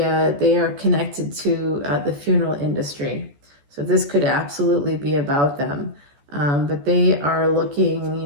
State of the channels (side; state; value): left; late; 14 ms